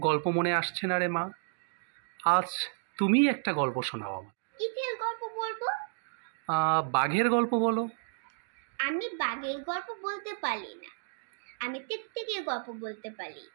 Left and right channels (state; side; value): silent; left; digital silence